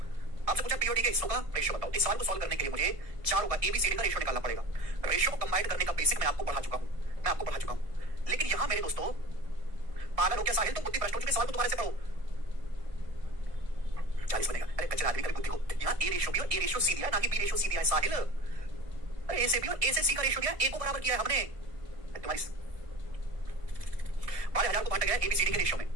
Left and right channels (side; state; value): left; late; 1.7 ms